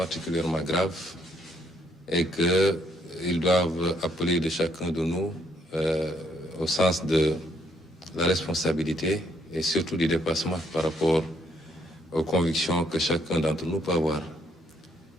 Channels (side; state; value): both; normal; correlation 0.70